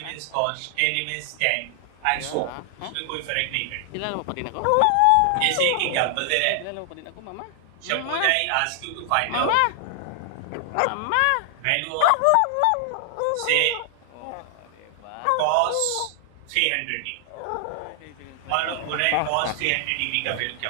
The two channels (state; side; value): different; both; correlation 0.00